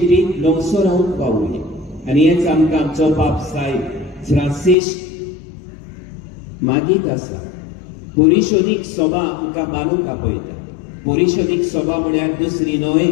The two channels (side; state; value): right; drops out; at 4.8 s